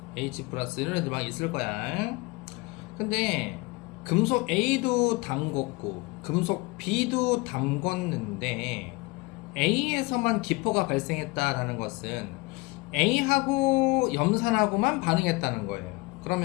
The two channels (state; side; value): quieter; right; 24.9 dB